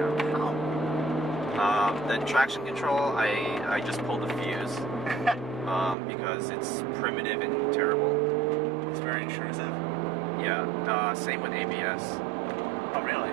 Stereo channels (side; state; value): left; drops out; at 6.0 s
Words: How? The traction control, I just pulled the fuse because it's primitive and terrible. It's very intrusive. Yeah, same with ABS. Oh really?